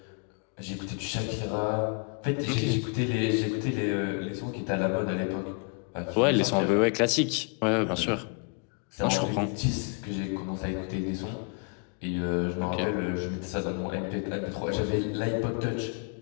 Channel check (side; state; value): right; quieter; 36.2 dB